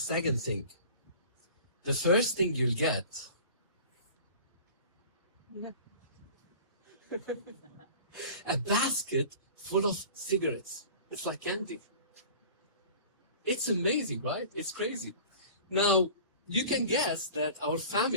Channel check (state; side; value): inverted; both; correlation -0.42